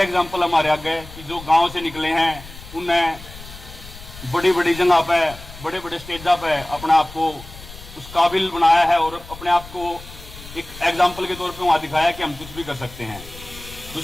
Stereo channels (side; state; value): left; noise; rumble, 16 dB below the sound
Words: एग्जाम्पल हमारे आगे कि जो गांव से निकले हैं, उन्हें बड़ी बड़ी जगह पे, बड़े बड़े स्टेजा पे अपने आप को उस काबिल बनाया है और अपने आप को एक एग्जाम्पल के तौर पे वहां दिखाया कि हम कुछ भी कर सकते हैं।